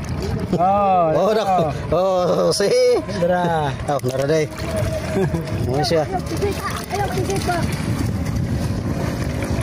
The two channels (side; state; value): both; identical; correlation 1.00